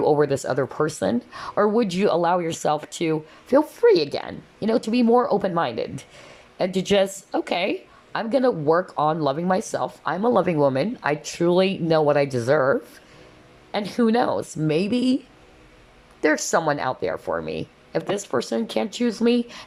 over this other person? Or would you allow yourself to feel free again, to be more open-minded and to just, okay, I'm going to work on loving myself. I'm a loving woman. I truly know what I deserve. And who knows, maybe there's someone out there for me. If this person can't choose me,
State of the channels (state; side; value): identical; both; correlation 1.00